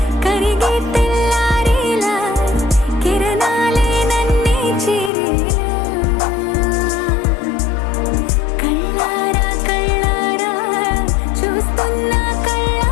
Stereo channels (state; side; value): drops out; right; at 5.1 s